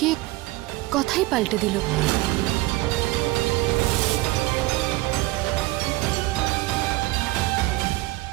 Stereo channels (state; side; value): quieter; left; 20.0 dB